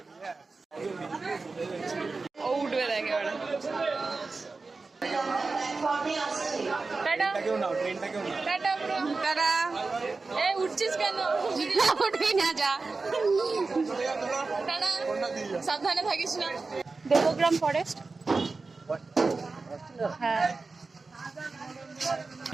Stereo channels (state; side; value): quieter; left; 3.9 dB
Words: ও উঠবে দেখে ওরা। উঠছিস কেন? উঠবি না, যা সাবধানে থাকিস না। দেবগ্রাম ফরেস্ট। হ্যাঁ